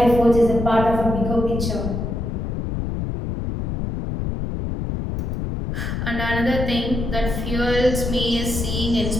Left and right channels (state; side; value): noise; left; rumble, 3 dB below the sound